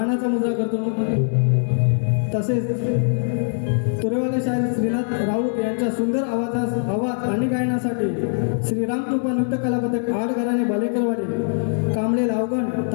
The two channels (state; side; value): silent; right; 64 dB below the other